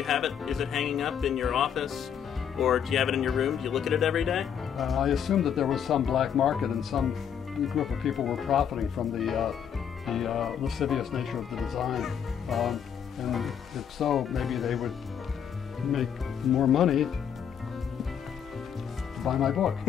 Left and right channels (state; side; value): quieter; right; 8.3 dB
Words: have it? Is it hanging up in your office? Or do you have it in your room? Do you look at it every day? I assumed that there was some black market and some group of people were profiting from the lascivious nature of the design. And if so, maybe they would make more money to buy my book.